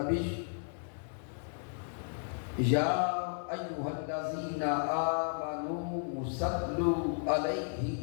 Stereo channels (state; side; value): silent; right; digital silence